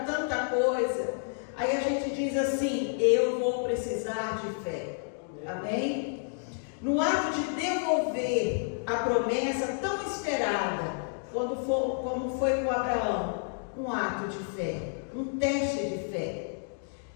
tanta coisa. Aí a gente diz assim, eu vou precisar de fé. Amém? No ato de devolver a promessa tão esperada, como foi com Abraão, um ato de fé, um teste de fé.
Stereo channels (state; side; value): silent; right; digital silence